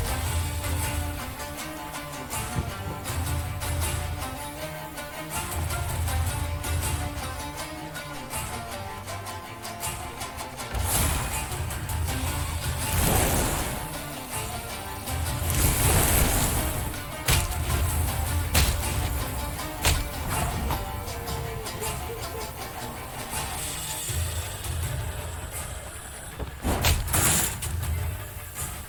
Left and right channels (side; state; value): both; identical; correlation 1.00